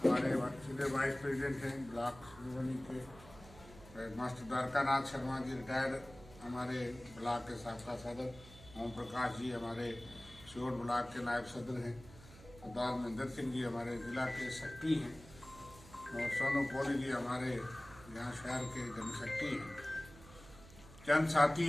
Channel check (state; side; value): noise; right; hum, 19 dB below the sound